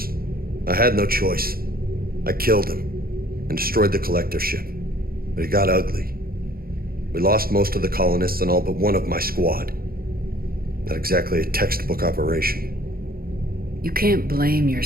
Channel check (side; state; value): left; late; 0.43 ms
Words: I had no choice. I killed him and destroyed the collector ship. But it got ugly. We lost most of the colonists and all but one of my squad. Not exactly a textbook operation. You can't blame